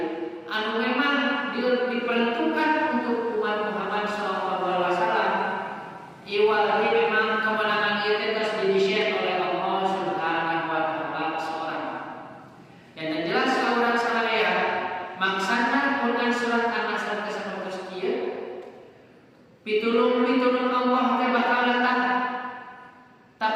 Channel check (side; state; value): both; identical; correlation 1.00